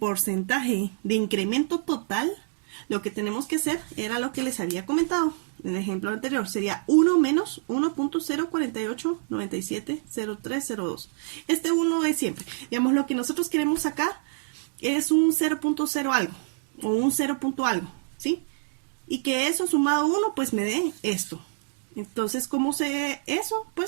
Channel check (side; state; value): left; silent; digital silence